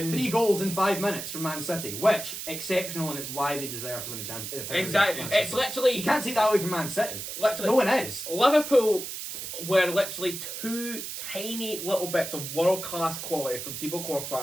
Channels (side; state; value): right; noise; hiss, 7 dB below the sound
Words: goals in 5 minutes from Man City, which exceptional, and it's why they deserve to win the Champions League. Exactly. It's literally... You can't take that away from Man City. Literally. No one is. Liverpool were literally 2 tiny little bits of world-class quality from Thibaut Courtois